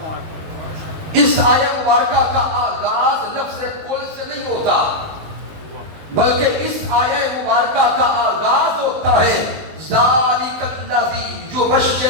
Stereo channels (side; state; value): left; late; 19 ms